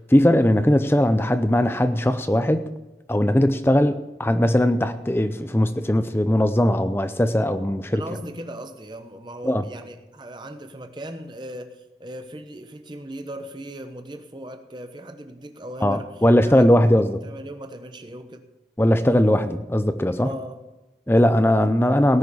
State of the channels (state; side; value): normal; both; correlation 0.93